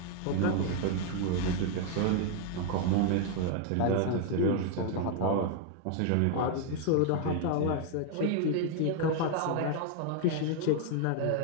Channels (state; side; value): different; both; correlation 0.00